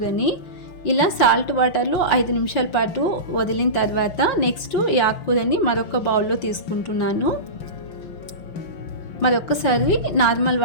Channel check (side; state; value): right; late; 5.8 ms